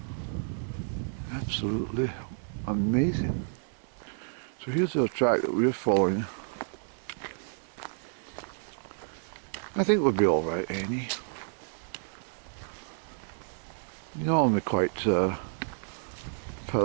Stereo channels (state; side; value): silent; left; digital silence